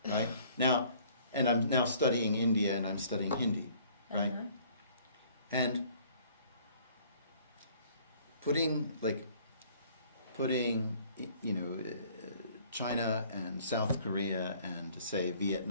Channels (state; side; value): inverted; both; correlation -0.57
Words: right? Now, and I'm now studying India, and I'm studying Hindi, right? And putting China and South Korea and say